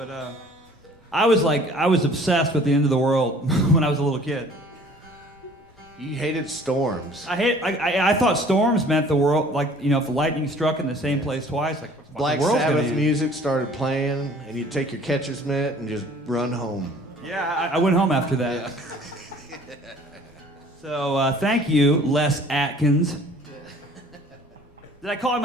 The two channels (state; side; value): normal; both; correlation 0.52